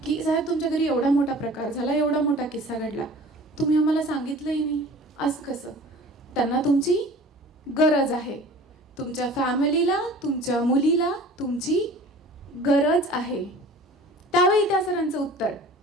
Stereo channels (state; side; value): normal; both; correlation 0.44